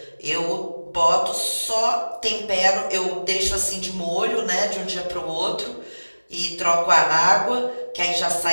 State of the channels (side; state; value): both; inverted; correlation -1.00